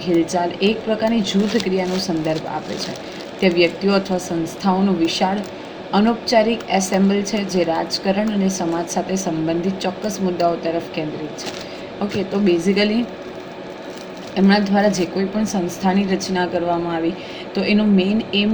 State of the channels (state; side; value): identical; both; correlation 1.00